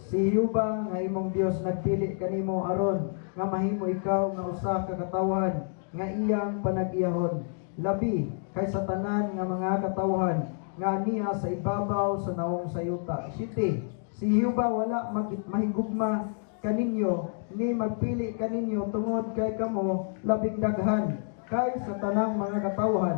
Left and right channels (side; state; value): right; silent; 58 dB below the other